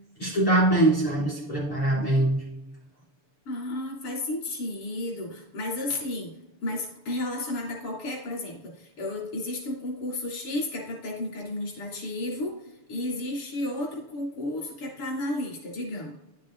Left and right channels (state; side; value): late; right; 6.9 ms